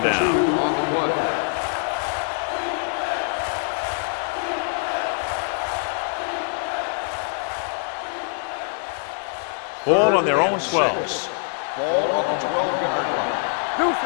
down. Ball on their own 12. Ball on the 12-yard line. Deuce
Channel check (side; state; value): right; silent; 58 dB below the other